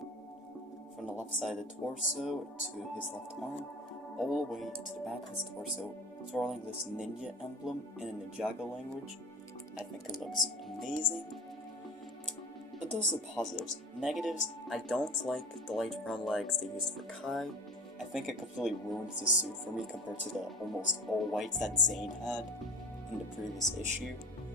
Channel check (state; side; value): normal; both; correlation 0.37